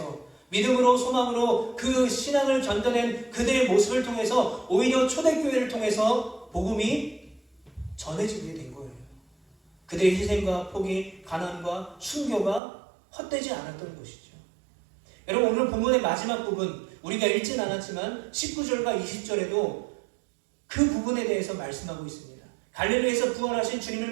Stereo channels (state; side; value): drops out; left; at 12.6 s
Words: 믿음으로 소망으로 그 신앙을 견뎌낸 그들의 모습을 통해서 오히려 초대교회를 통해서 복음이 전해지게 된 거예요. 그들의 희생과 포기, 가난과 순교가 헛되지 않았던 것이죠. 여러분, 오늘 본문의 마지막 부분 우리가 읽진 않았지만 19절과 20절에도 그 부분에 대해서 말씀하고 있습니다. 갈릴리에서 부활하신 주님을